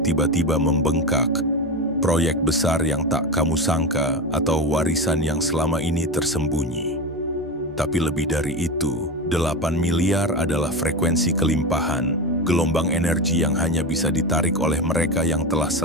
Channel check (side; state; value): both; normal; correlation 0.21